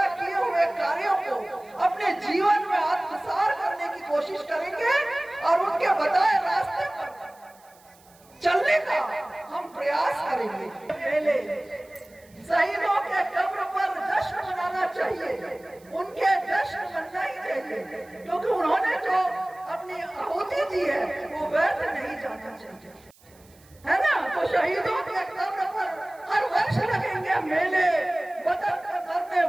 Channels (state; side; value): noise; right; hiss, 28 dB below the sound